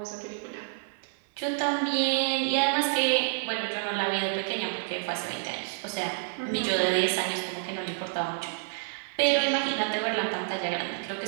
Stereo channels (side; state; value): left; silent; digital silence